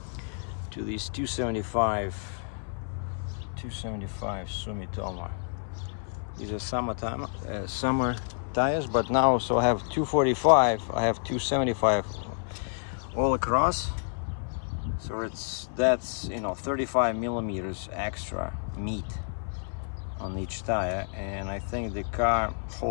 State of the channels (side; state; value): right; silent; 56 dB below the other